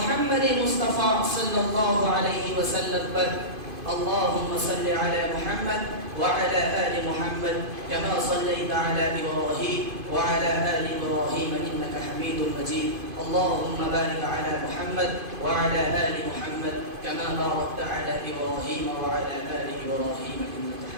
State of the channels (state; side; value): late; left; 2.5 ms